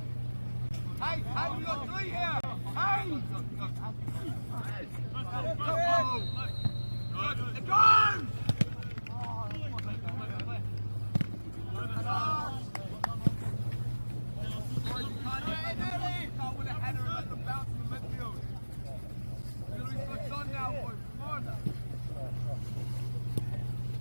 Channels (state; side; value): inverted; both; correlation -1.00